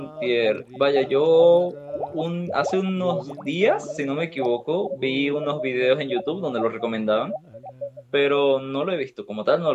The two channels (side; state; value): both; identical; correlation 1.00